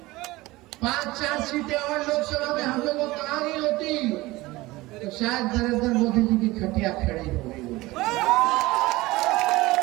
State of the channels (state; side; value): quieter; left; 19.9 dB